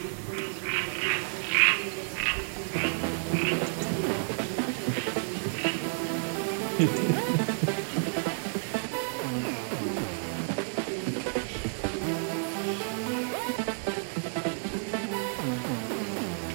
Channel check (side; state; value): left; silent; digital silence